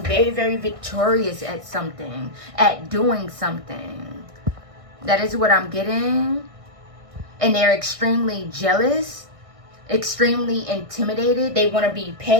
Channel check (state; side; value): late; left; 1.6 ms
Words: very, very victorious at something, at doing something. That is what I'm getting. And they're extremely jealous, extremely intimidated. They want to be